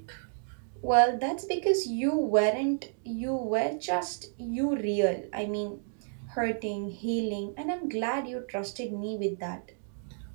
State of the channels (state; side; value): silent; left; digital silence